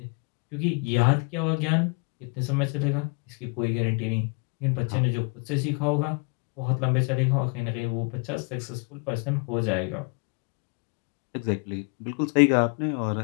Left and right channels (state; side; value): quieter; right; 34.2 dB